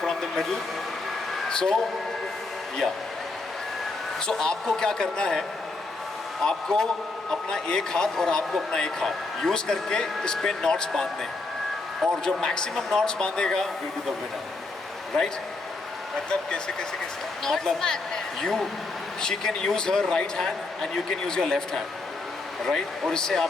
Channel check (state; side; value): quieter; right; 3.4 dB